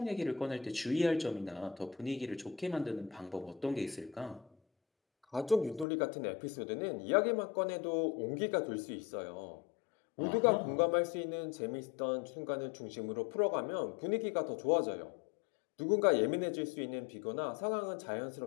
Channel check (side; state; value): right; drops out; at 5.9 s